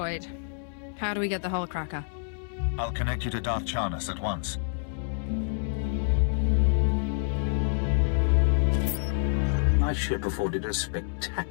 How do we get the Hullcracker? I'll connect you to Darth Charnas at once. My ship afforded a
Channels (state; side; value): silent; right; digital silence